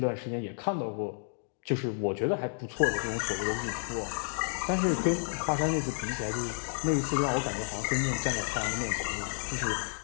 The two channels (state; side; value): silent; right; digital silence